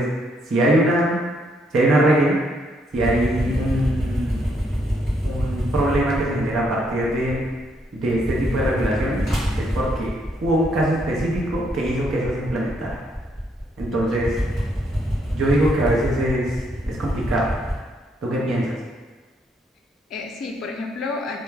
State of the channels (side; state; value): both; normal; correlation 0.73